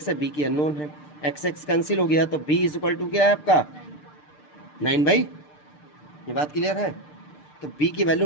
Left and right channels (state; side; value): late; right; 6.7 ms